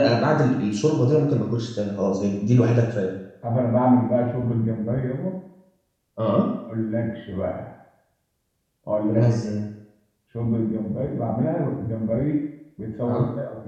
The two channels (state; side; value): identical; both; correlation 1.00